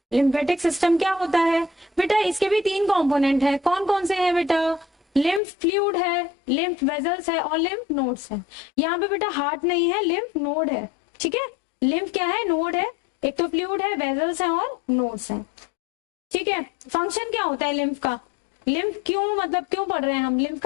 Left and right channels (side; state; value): right; drops out; at 5.4 s